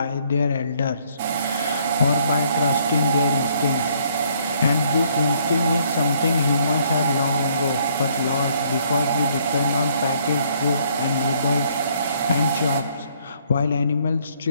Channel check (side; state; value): both; inverted; correlation -0.66